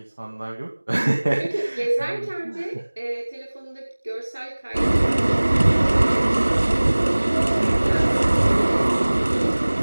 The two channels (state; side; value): inverted; both; correlation -1.00